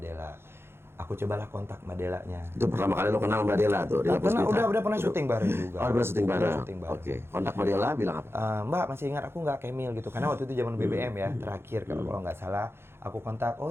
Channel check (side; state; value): left; late; 0.12 ms